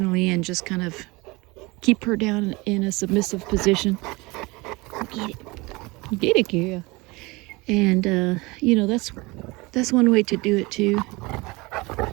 and just kind of keep her down in a submissive position. Get it, girl. And you know, that's one way to do it too.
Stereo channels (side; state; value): left; quieter; 24.1 dB